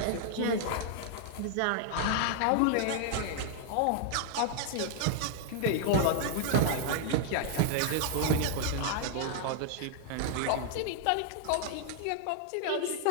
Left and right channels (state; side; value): different; both; correlation -0.01